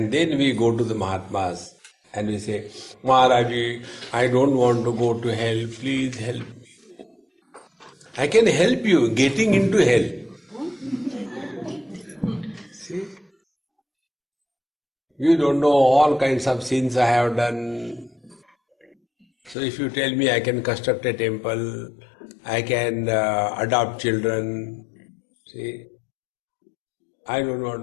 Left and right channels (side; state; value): right; drops out; at 19.6 s